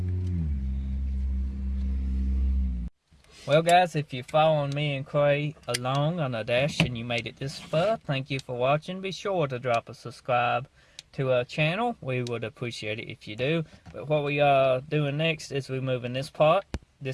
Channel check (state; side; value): identical; both; correlation 1.00